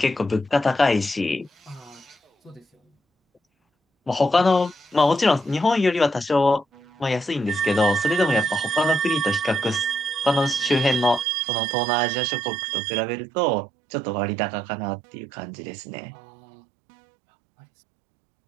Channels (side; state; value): left; drops out; at 11.2 s